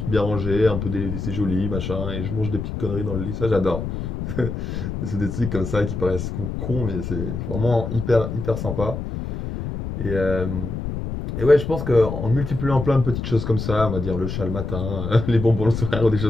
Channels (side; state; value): left; noise; rumble, 5 dB below the sound